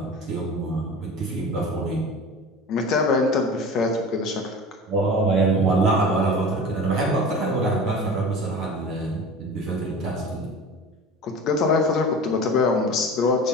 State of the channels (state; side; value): normal; both; correlation 0.35